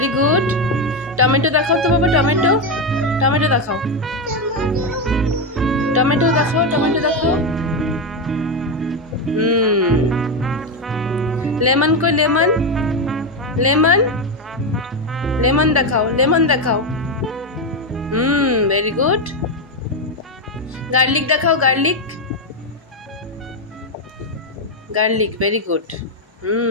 good. টমেটো দেখাও তো বাবা, টমেটো, টমেটো দেখাও, টমেটো দেখাও, টমেটো দেখাও। লেমন কই? লেমন, লেমন, লেমন দেখাও, লেমন দেখাও। Very good. গার্লিক দেখাও, garlic, garlic, very good.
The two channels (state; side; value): normal; both; correlation 0.08